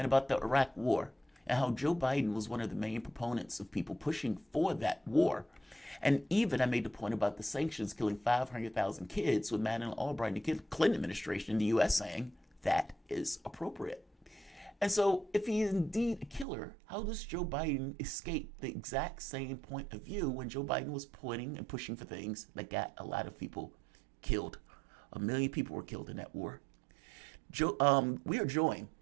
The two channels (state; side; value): drops out; left; at 16.4 s